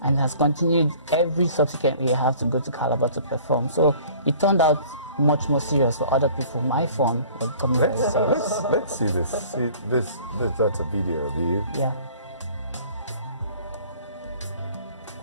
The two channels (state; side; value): inverted; both; correlation -0.50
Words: And has continued every subsequent year I have to go to Calabar to perform. So it turned out much more serious for other people. My phone was becoming very serious. Let's see this. See this. That's a video of you. Yeah.